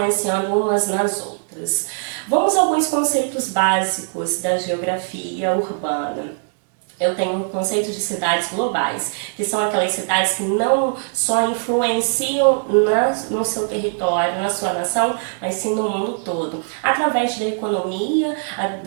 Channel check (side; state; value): left; silent; 65 dB below the other